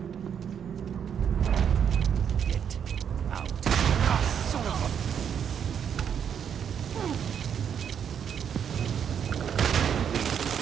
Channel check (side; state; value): left; quieter; 8.1 dB